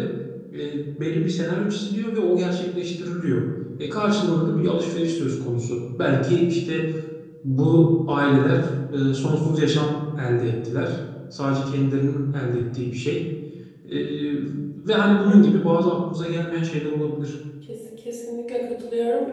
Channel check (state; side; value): identical; both; correlation 1.00